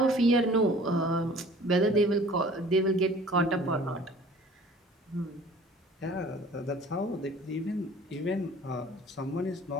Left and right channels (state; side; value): normal; both; correlation 0.48